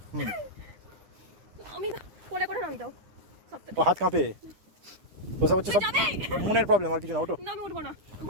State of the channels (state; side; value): late; left; 10 ms